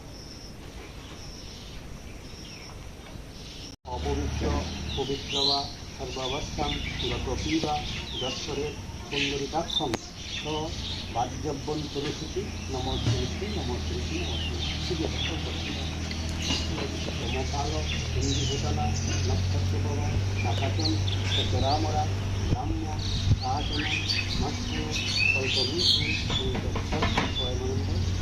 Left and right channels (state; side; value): identical; both; correlation 1.00